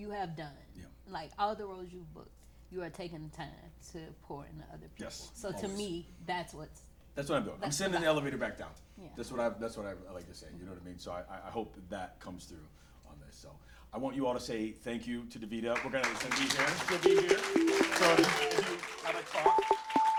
have done, like all the roles you've booked, you are taking the time to pour into other people. Yes, so always. To me, that's what I'm doing. I'm sending the elevator back down. Yeah. That's what I like to say. You know what I mean? So I hope that comes through on this. So I want you all to say thank you to DaVida. We're gonna be here. She'll be here. So if you have a talk,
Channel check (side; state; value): both; identical; correlation 1.00